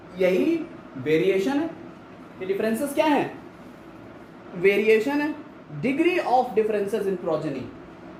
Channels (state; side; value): identical; both; correlation 1.00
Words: यही वेरिएशन है। ये डिफरेंसेस क्या है, वेरिएशन है। Degree of differences in progeny,